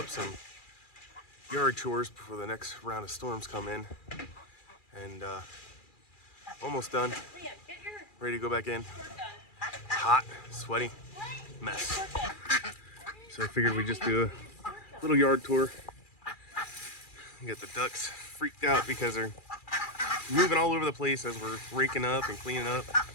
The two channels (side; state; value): right; late; 2.4 ms